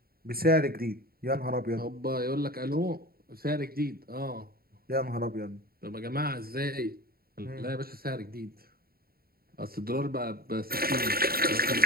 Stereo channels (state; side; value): late; left; 0.44 ms